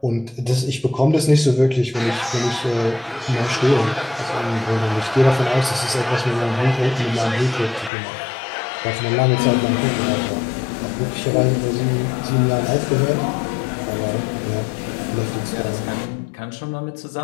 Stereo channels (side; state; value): right; drops out; at 7.9 s